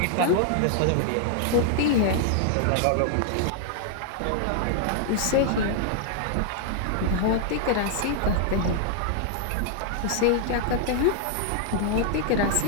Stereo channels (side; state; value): both; different; correlation 0.00